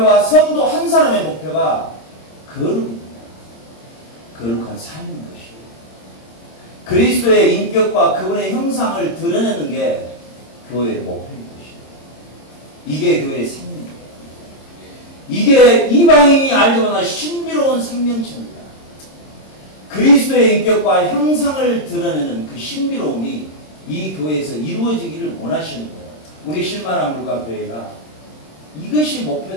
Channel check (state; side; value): late; right; 26 ms